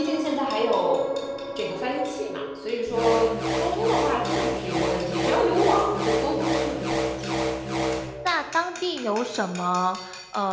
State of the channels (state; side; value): identical; both; correlation 1.00